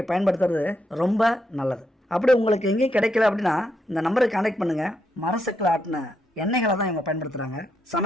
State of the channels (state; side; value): normal; both; correlation 0.80